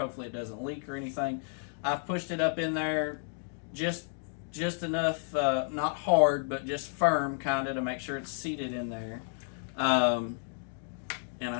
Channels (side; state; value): right; silent; 57 dB below the other